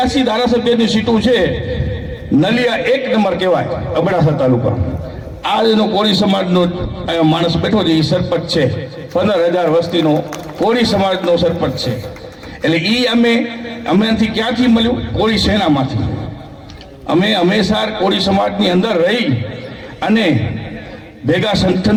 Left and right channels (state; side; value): identical; both; correlation 1.00